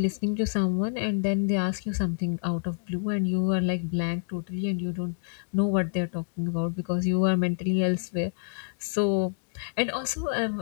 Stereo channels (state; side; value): silent; right; digital silence